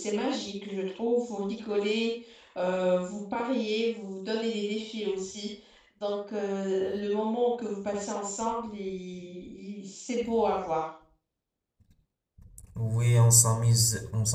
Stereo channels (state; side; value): identical; both; correlation 1.00